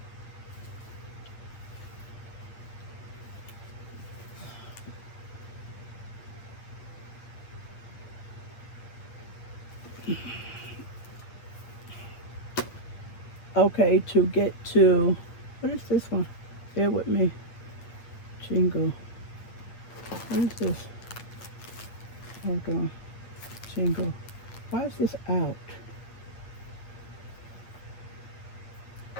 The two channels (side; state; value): right; late; 8.9 ms